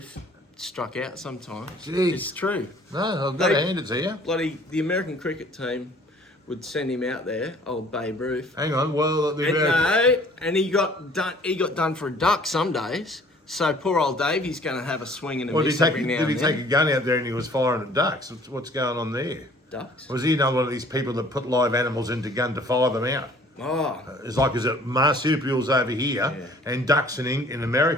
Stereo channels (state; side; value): normal; both; correlation 0.54